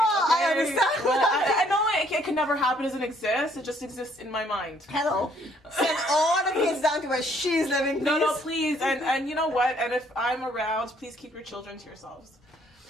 okay? understand. Well, I know it can never happen, doesn't exist. It just exists in my mind. Hello. Send all the kids down to where she's living, please. No, please. And you know what? And if I'm around, please keep your children to yourselves.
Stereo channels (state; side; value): normal; both; correlation 0.65